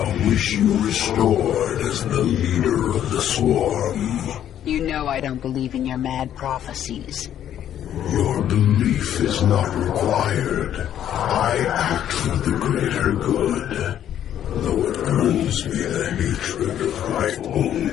wish you restored as the leader of the Swarm. You know I don't believe in your mad prophecies. Your belief is not required. I act for the greater good, though it earns me the hatred of my own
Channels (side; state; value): right; quieter; 10.6 dB